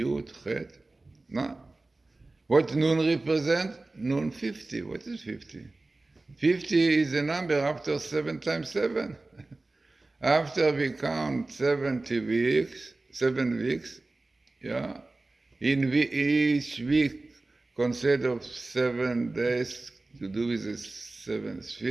Chet. No. What Nun represent? Nun 50. What is 50? 50 is a number after 7 times 7. After we count 7 weeks, yeah, in each week consists of 7 days to do with the 7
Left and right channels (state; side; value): quieter; left; 3.1 dB